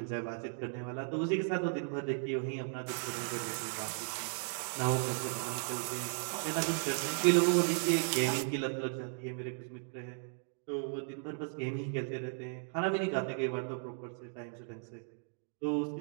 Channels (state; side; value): silent; left; 54 dB below the other